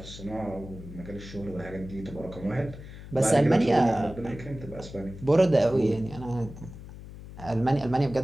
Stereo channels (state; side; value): noise; left; hum, 14 dB below the sound